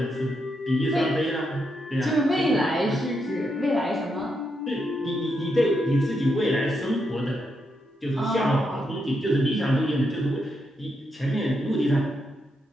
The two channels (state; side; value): normal; both; correlation 0.82